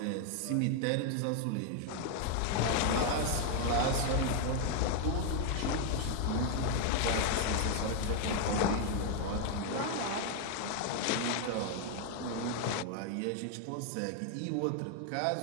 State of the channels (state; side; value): different; both; correlation 0.00